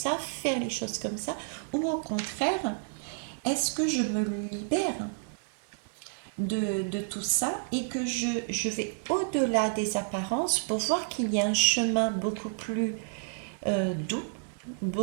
faire les choses comme ça, ou au contraire, est-ce que je me libère de tout ça et que je vais au-delà des apparences pour voir qu'il y a un chemin beaucoup plus doux,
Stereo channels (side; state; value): left; silent; 56 dB below the other